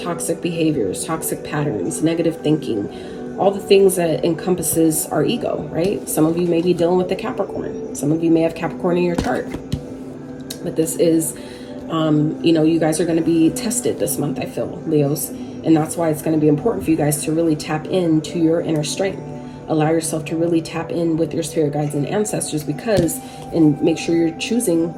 behaviors, toxic patterns, negative thinking, all the things that encompasses our ego, right? Some of you may be dealing with the Capricorn. Some of you may have Capricorn in your chart. But this is, you guys are going to be tested this month, I feel, Leos. And that's why it's going to be important for you guys to really tap into your inner strength. Allow yourself to really tap in with your spirit guides and ancestors, and make sure you're choosing,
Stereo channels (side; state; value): both; identical; correlation 1.00